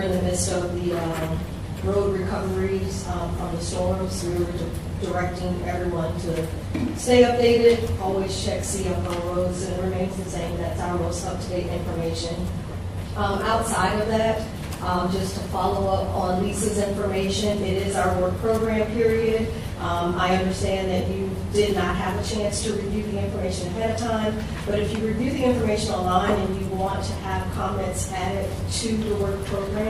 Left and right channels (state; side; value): identical; both; correlation 1.00